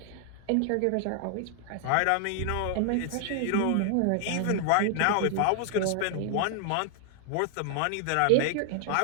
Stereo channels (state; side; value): different; both; correlation 0.00